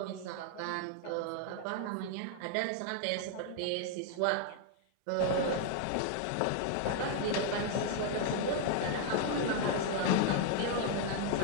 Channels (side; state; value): both; different; correlation 0.00